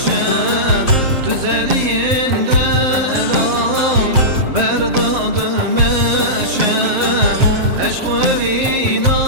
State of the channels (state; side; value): late; left; 7.5 ms